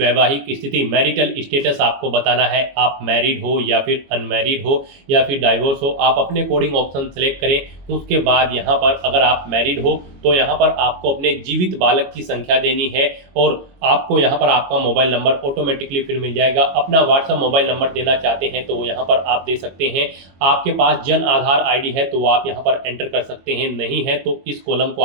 स्थिति मैरिटल स्टेटस आपको बताना है, आप मैरिड हो या फिर अनमैरिड हो या फिर डाइवोर्स हो, आप अपने अकॉर्डिंग ऑप्शन सेलेक्ट करें। उसके बाद यहाँ पर अगर आप मैरिड हो तो यहाँ पर आपको अपने जीवित बालक की संख्या देनी है और आपको यहाँ पर आपका मोबाइल नंबर ऑटोमेटिकली फिर मिल जाएगा। अपना व्हाट्सएप मोबाइल नंबर देना चाहते हैं तो वो यहाँ पर आप दे सकते हैं। आपके पास जन आधार ID है तो वो आप यहाँ पर एंटर कर सकते हैं, नहीं है तो इस कॉलम को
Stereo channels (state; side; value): late; left; 22 ms